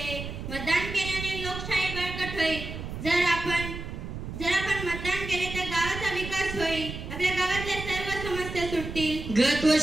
मतदान केल्याने लोकशाही बळकट होईल. जर आपण मतदान केले तर गावाचा विकास होईल. आपल्या गावातल्या सर्व समस्या सुटतील. गत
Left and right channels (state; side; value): noise; right; rumble, 8 dB below the sound